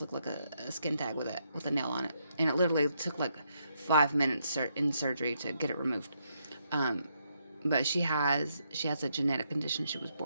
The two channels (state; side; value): inverted; both; correlation -0.77